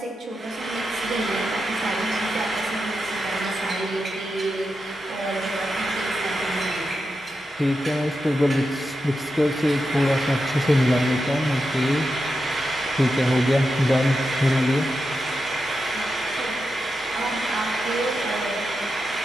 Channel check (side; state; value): both; normal; correlation 0.88